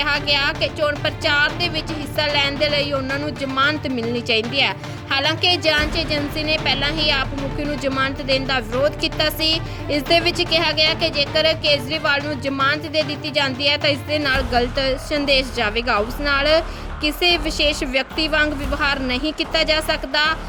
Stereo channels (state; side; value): identical; both; correlation 1.00